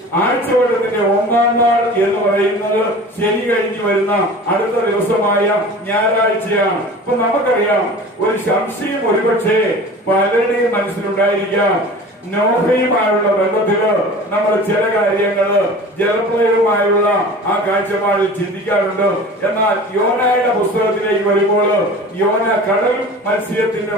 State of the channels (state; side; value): normal; both; correlation 0.39